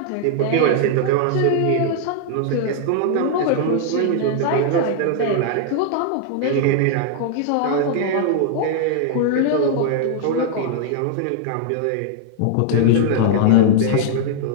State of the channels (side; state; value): both; different; correlation 0.00